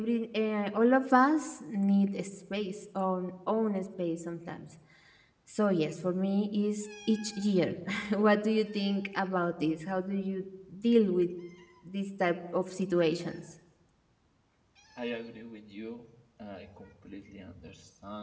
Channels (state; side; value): identical; both; correlation 1.00